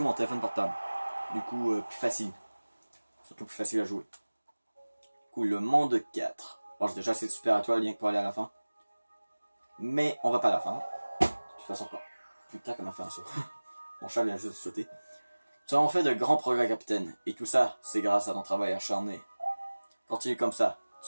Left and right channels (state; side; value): inverted; both; correlation -1.00